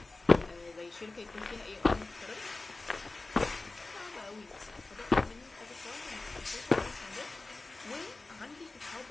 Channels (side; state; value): right; quieter; 3.3 dB